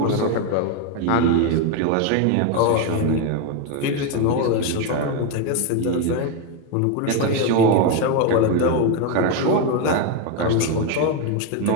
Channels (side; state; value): both; different; correlation 0.02